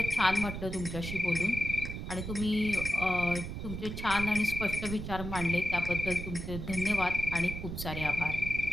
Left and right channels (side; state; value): right; noise; rumble, 6 dB below the sound